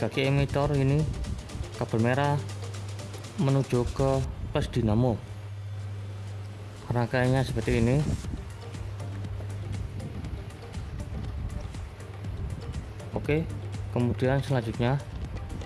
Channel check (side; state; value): both; identical; correlation 1.00